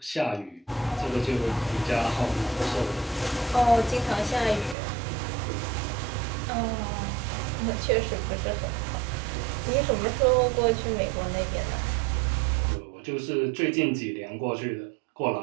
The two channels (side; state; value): left; drops out; at 4.8 s